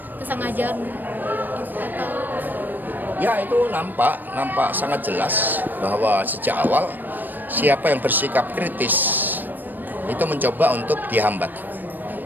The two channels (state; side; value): late; left; 0.089 ms